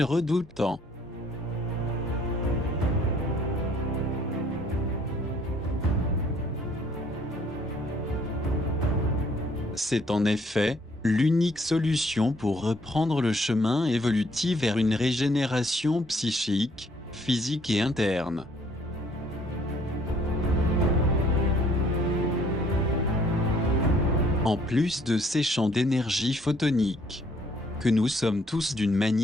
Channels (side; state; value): both; normal; correlation 0.62